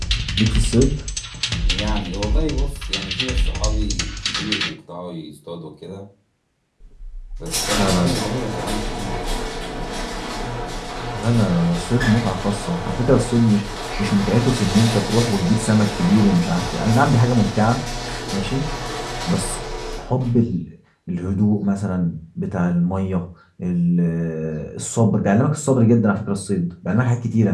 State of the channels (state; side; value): identical; both; correlation 1.00